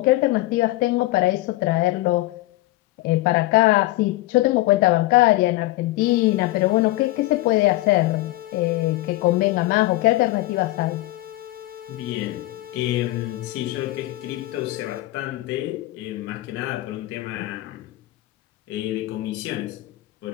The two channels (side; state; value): right; quieter; 18.1 dB